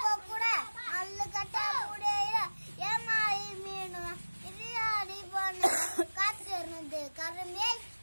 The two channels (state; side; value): inverted; both; correlation -1.00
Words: கொக்குட அல்லு கட்டா முடியல ஏமாறி மீனு இதையாடி பண்ண காத்திருந்து கருமே